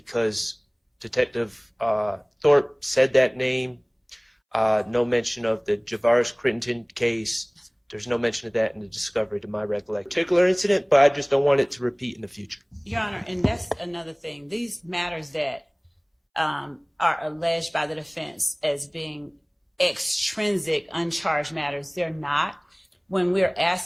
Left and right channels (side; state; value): both; identical; correlation 1.00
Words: Detective Thorpe said that name. No mention of the Javaris Crittenden case. There's no mention of that in the discovery, to my recollection. Particular incident, but I just don't want it to repeat in the future. Your Honor, and that's another thing. These matters that are alleged by the defense as being extrinsic, uncharged matters, they're not. When we're